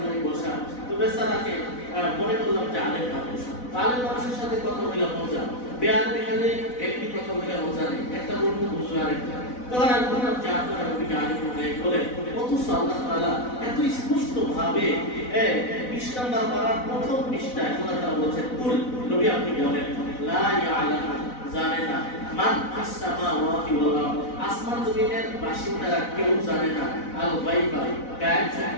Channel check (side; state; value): right; late; 4.0 ms